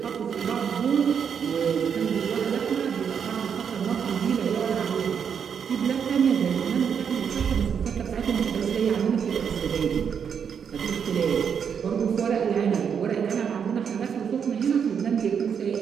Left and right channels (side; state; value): left; quieter; 7.3 dB